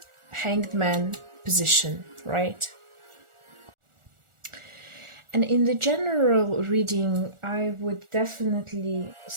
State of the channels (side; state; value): left; late; 1.4 ms